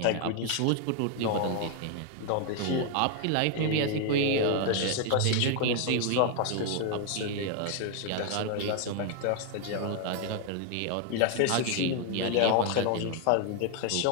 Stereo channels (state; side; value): different; both; correlation 0.00